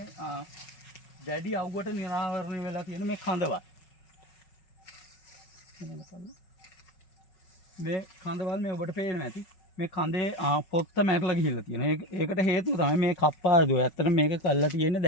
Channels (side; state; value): right; late; 5.4 ms